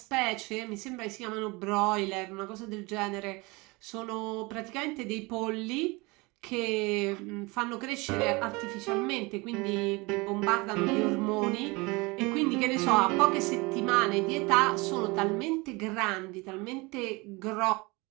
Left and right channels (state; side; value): quieter; left; 25.3 dB